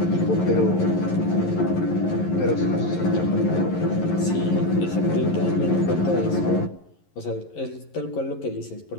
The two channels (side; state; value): right; late; 11 ms